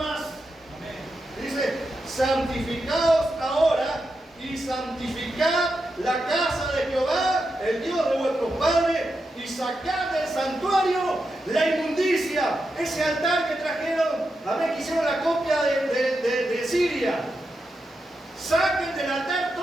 Dice, santificaos ahora y santificad la casa de Jehová, el Dios de vuestros padres, y sacad del santuario la inmundicia, ese altar que trajeron, que hicieron la copia de Siria. Saquen del altar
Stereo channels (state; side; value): normal; both; correlation 0.87